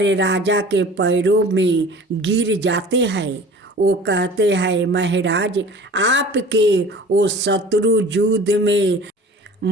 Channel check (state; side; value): normal; both; correlation 0.43